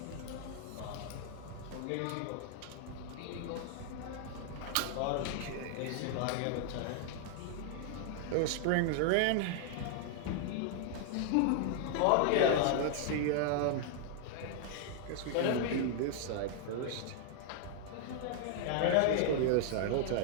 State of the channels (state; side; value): different; both; correlation 0.00